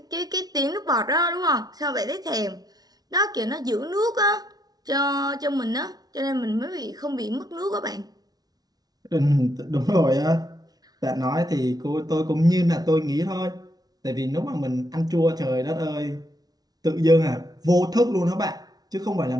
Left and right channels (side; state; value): left; late; 0.19 ms